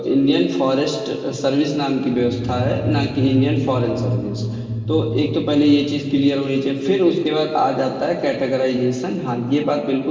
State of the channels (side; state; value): both; identical; correlation 1.00